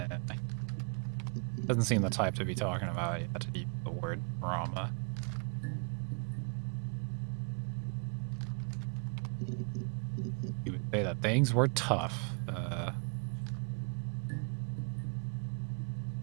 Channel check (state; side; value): quieter; left; 38.6 dB